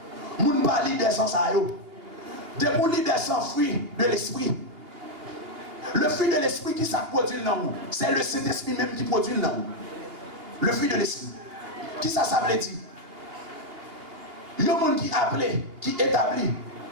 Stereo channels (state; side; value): late; left; 2.7 ms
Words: Vous ne parlez des sans ça. Des moulis des sans fruits de l'esprit. Le fruit de l'esprit qui ça produit dans nous, c'est le Saint-Esprit même qui produit dans nous. Le fruit de l'esprit. Qui ça veut dire? Il y a un monde qui appelé, qui établit,